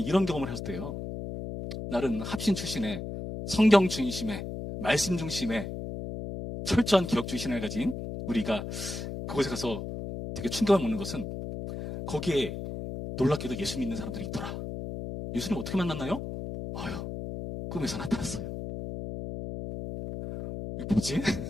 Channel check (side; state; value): left; noise; hum, 6 dB below the sound